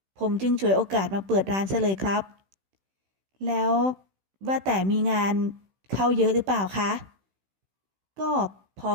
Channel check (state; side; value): late; left; 16 ms